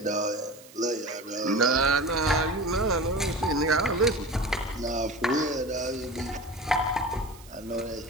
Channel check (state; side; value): noise; right; hiss, 22 dB below the sound